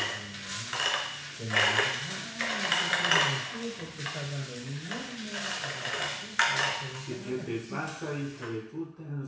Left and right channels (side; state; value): both; identical; correlation 1.00